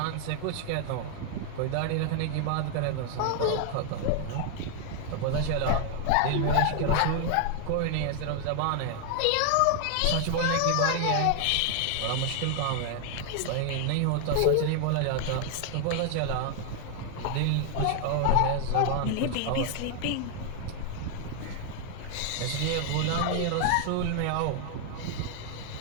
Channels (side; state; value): both; different; correlation 0.00